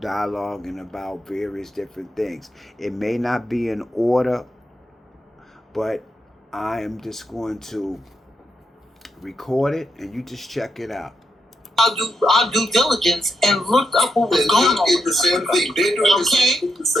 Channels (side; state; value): both; normal; correlation 0.83